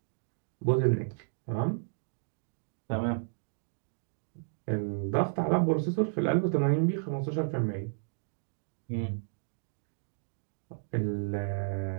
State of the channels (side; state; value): left; silent; digital silence